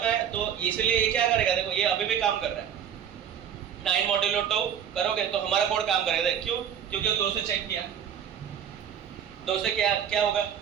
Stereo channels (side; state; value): left; quieter; 8.6 dB